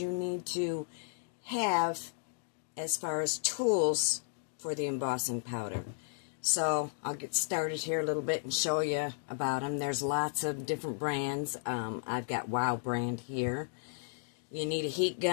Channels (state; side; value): silent; right; digital silence